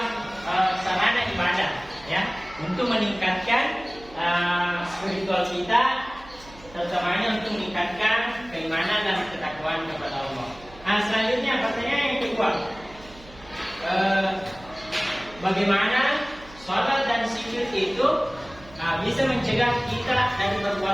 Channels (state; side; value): noise; right; hum, 21 dB below the sound